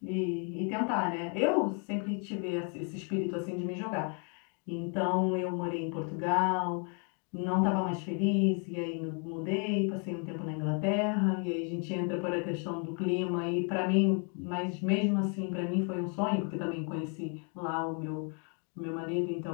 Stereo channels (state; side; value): quieter; right; 39.1 dB